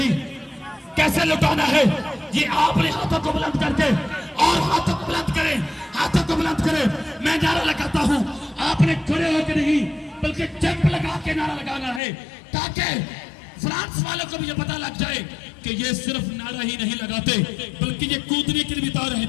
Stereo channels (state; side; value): drops out; right; at 12.0 s